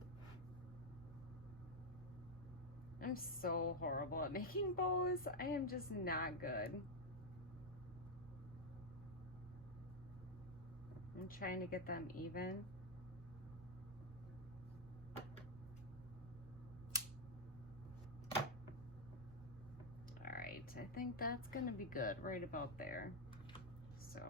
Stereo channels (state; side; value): normal; both; correlation 0.00